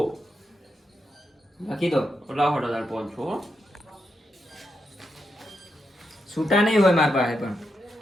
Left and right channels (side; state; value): both; normal; correlation 0.84